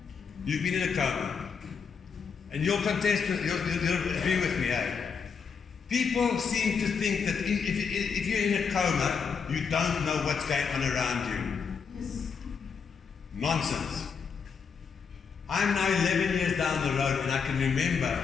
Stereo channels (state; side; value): quieter; right; 6.0 dB